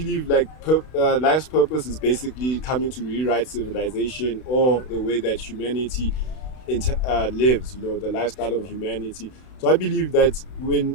like life's purpose is basically coming to rewrite civilization, or the way that humanity lives, the lifestyle of humanity. So I believe that when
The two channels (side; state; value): right; late; 32 ms